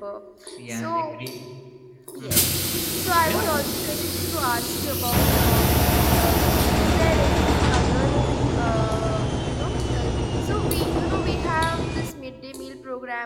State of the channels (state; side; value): identical; both; correlation 1.00